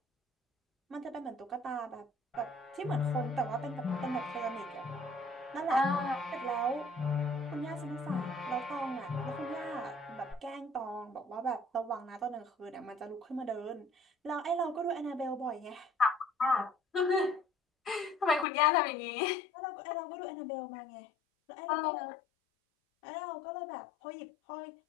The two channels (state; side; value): drops out; right; at 18.4 s